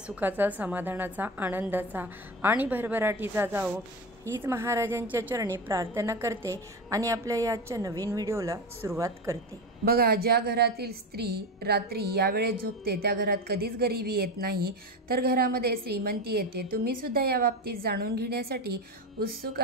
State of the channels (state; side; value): normal; both; correlation 0.21